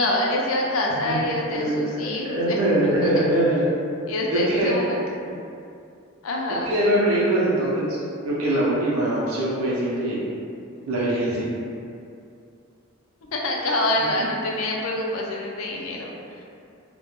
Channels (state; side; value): normal; both; correlation 0.16